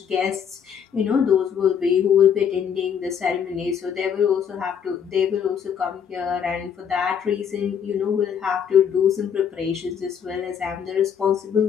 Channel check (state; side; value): quieter; right; 7.8 dB